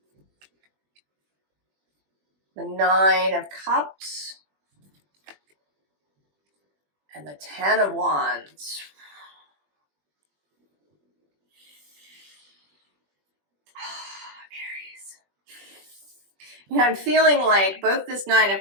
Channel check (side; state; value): left; late; 21 ms